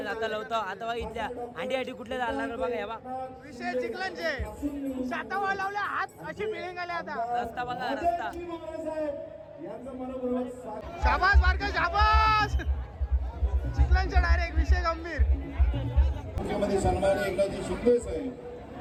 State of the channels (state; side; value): identical; both; correlation 1.00